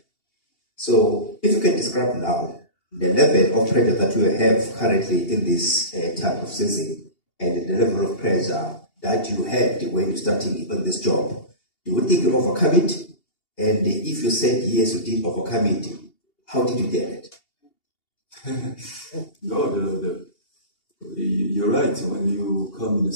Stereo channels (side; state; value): right; late; 2.8 ms